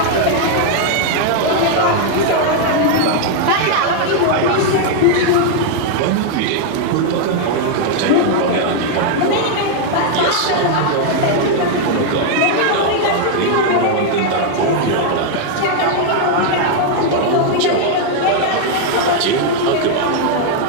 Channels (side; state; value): both; different; correlation 0.00